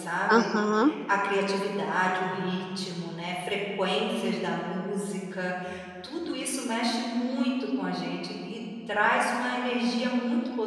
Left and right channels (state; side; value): identical; both; correlation 1.00